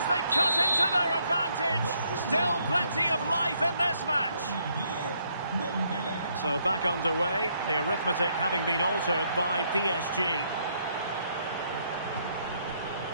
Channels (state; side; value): inverted; both; correlation -0.71